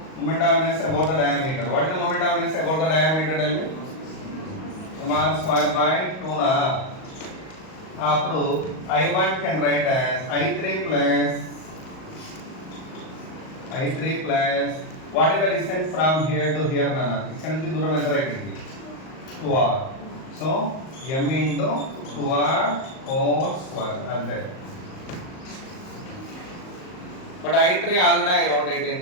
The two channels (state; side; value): late; right; 38 ms